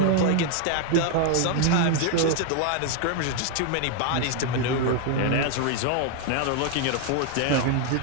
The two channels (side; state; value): both; different; correlation 0.01